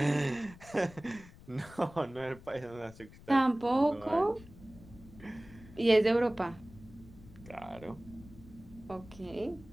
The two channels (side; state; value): left; noise; rumble, 20 dB below the sound